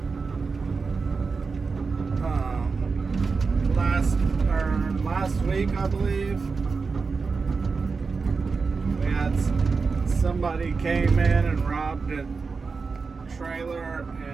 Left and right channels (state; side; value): quieter; left; 4.7 dB